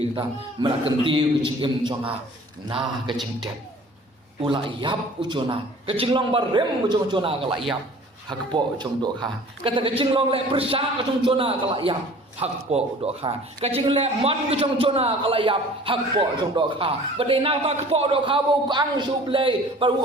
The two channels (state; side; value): normal; both; correlation 0.47